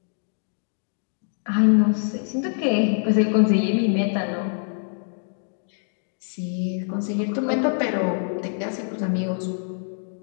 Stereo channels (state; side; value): silent; right; digital silence